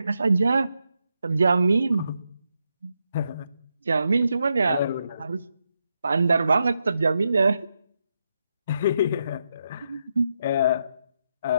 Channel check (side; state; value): both; inverted; correlation -0.83